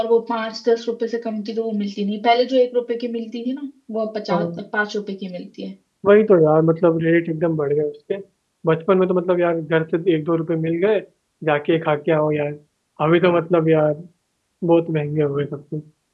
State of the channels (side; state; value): both; identical; correlation 1.00